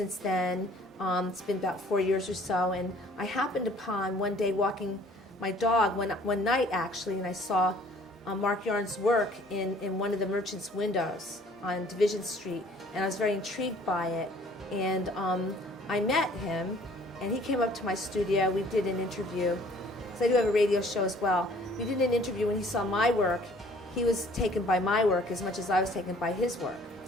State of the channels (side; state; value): both; normal; correlation 0.55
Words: then. It's been about 4 years or so, and I happened upon one day walking my dog one night actually, and I saw Marc Yarns' work in one of the merchants' windows on Division Street, and I was very intrigued by it. And I met him, and he came up to my studio. We did an interview. I do have a radio show as well. We did an interview. When he saw my work, he was taken by my work as much as I was taken by his work.